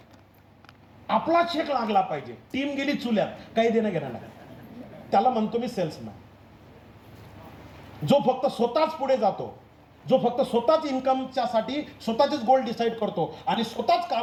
आपला चेक लागला पाहिजे. टीम गेली चुल्यात, काही देणं घेणं नाही. त्याला म्हणतो मी सेल्समॅन. जो फक्त स्वतःच पुढे जातो, जो फक्त स्वतःच इन्कमच्या साठी स्वतःचेच गोल डिसाईड करतो आणि स्वतःच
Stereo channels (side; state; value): both; identical; correlation 1.00